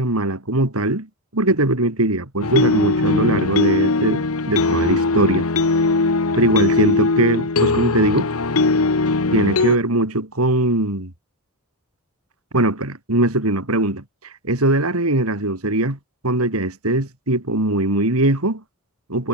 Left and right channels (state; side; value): normal; both; correlation 0.03